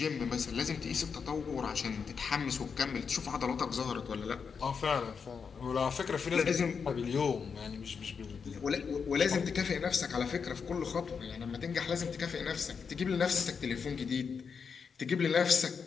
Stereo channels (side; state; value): right; quieter; 6.0 dB